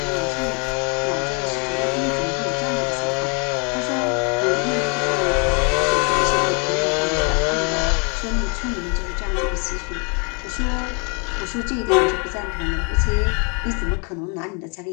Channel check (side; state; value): right; quieter; 35.1 dB